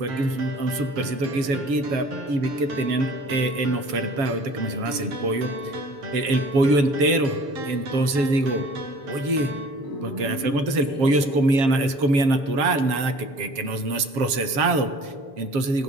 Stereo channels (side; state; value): left; late; 7.1 ms